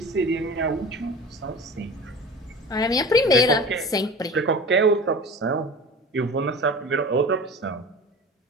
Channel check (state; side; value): normal; both; correlation 0.36